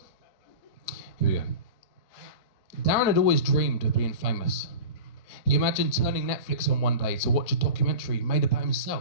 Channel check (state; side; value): late; right; 3.9 ms